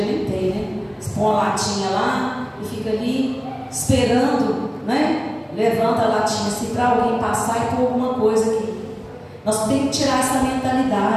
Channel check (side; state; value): both; identical; correlation 1.00